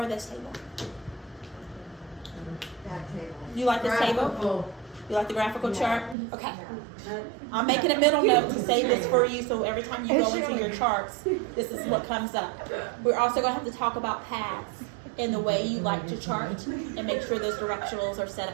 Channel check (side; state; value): left; drops out; at 6.2 s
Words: this table. You like this table? You like the graphical chart? Okay. I'm making a middle note to say this for you, so every time you go into your charts, this is what comes up. We're also going to have to talk about paths in the way you like to chart and make sure those directionals are set